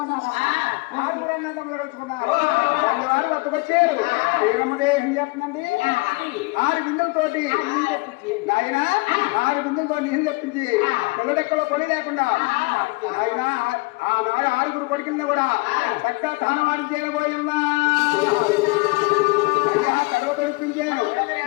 ఆరుగురన్నా తమ్ముడు కలుసుకున్నారు వాళ్ళు వారు వద్దకొచ్చారు శ్రీరమ్మదే ఏం చేస్తుందండి 6 బిందులతోటి నాయన 6 బిందులతో నీళ్ళు తెప్పించి పిల్లడెక్కడో పని లేకుండా ఆయన ఆనాడు 6 కొడుకుల్ని కూడా చక్కగా తానవాడు చేయబోయున్నా అయ్యా కడవ తొలిపించాను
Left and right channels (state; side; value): quieter; right; 25.9 dB